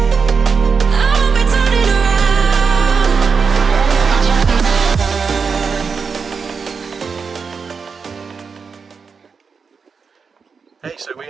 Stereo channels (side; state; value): left; quieter; 5.5 dB